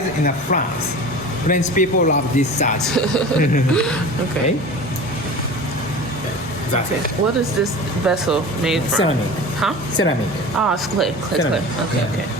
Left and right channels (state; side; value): normal; both; correlation 0.36